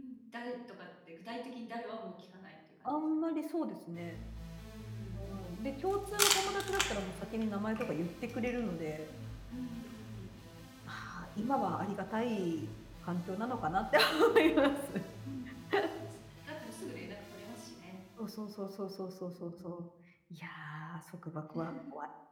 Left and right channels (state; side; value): identical; both; correlation 1.00